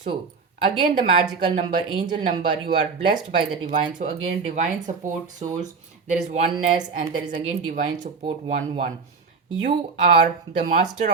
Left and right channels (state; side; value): quieter; left; 4.9 dB